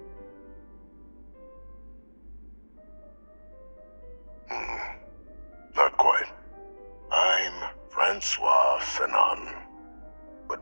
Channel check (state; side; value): inverted; both; correlation -1.00